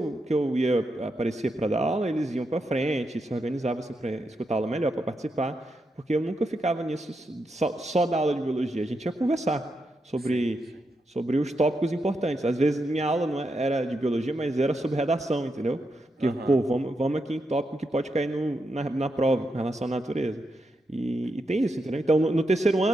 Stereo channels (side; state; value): both; normal; correlation 0.84